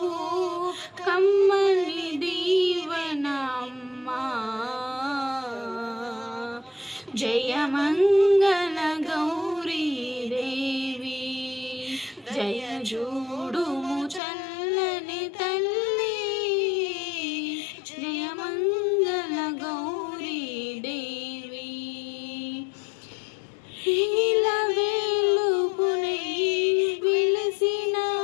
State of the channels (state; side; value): drops out; right; at 14.2 s